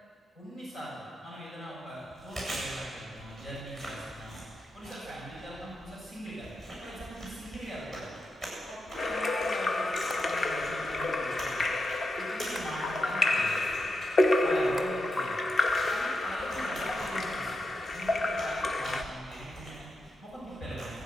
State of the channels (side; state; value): both; normal; correlation 0.86